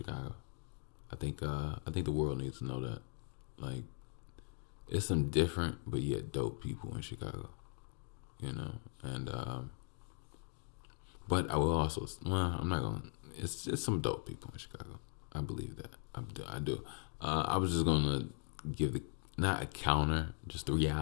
I think the world needs to know that. Like, it's some different but yet dope people in Chicago. You know, and but I will also, well, I'm not gonna. It's just some dope people in Chicago. I believe that. I do. I was just gonna give the not a counter, just the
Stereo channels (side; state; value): right; quieter; 36.3 dB